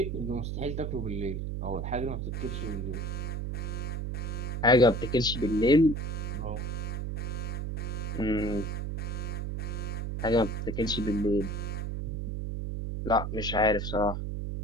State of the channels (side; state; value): right; noise; hum, 3 dB below the sound